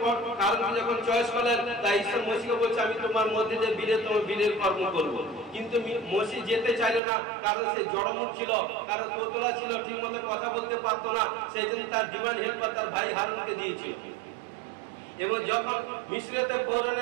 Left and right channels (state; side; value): drops out; left; at 7.0 s